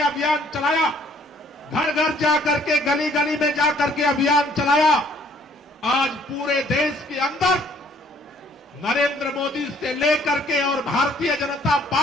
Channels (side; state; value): both; normal; correlation 0.61